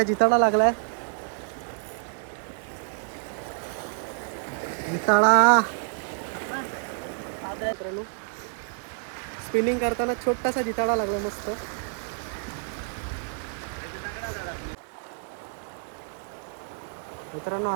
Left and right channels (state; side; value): silent; left; 59 dB below the other